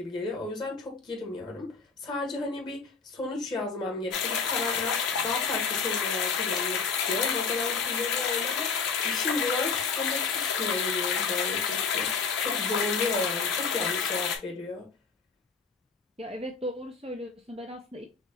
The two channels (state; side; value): quieter; right; 5.1 dB